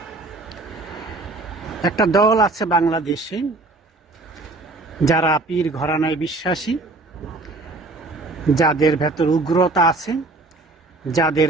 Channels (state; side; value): quieter; left; 3.2 dB